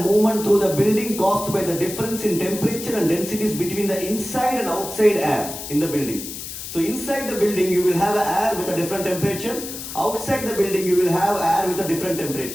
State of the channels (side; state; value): left; noise; hiss, 9 dB below the sound